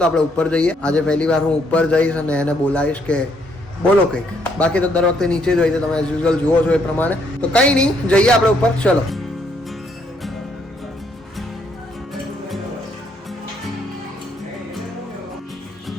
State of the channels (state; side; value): normal; both; correlation 0.71